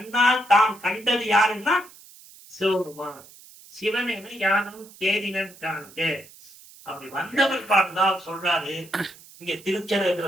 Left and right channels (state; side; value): noise; right; hiss, 22 dB below the sound